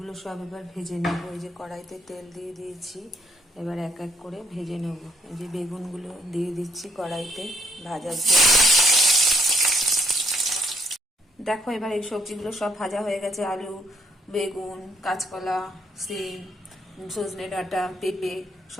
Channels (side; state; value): both; normal; correlation 0.68